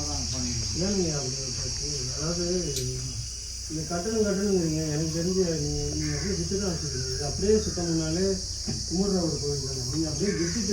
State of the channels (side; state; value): both; identical; correlation 1.00